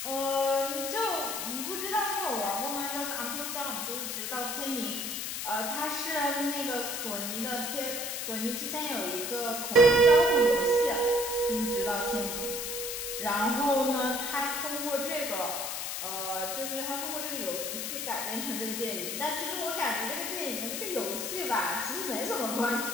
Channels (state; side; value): noise; left; hiss, 3 dB below the sound